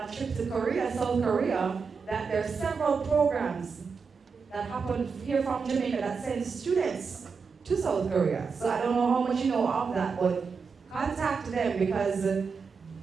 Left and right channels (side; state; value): left; quieter; 5.3 dB